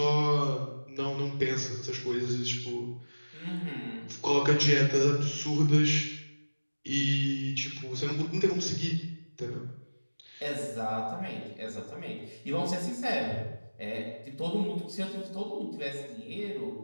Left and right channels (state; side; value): inverted; both; correlation -1.00